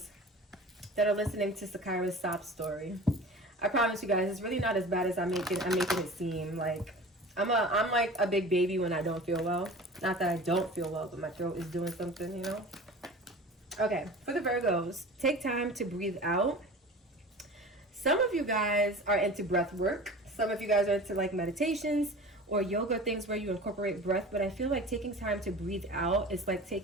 that are listening to Sakira's sob story, I promise you guys, it's really not as bad as I'm making it seem. Like, I'm like a big baby when I don't feel well. Not that I don't feel well, but my throat is doing something, you know? Okay, for the Virgos, take time to breathe out. Some of you guys are into breath work. Some of you guys are into like meditations or yoga, things where you incorporate breath. But I feel like taking time to breathe out is like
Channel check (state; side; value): normal; both; correlation 0.38